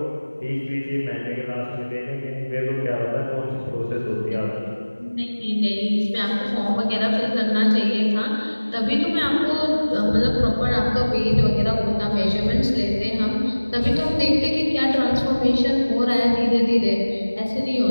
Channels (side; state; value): both; inverted; correlation -1.00